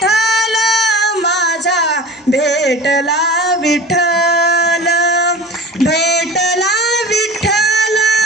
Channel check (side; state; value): both; normal; correlation 0.35